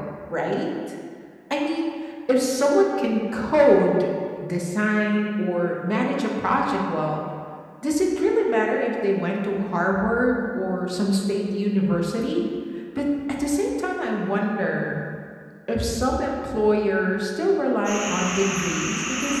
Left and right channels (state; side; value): identical; both; correlation 1.00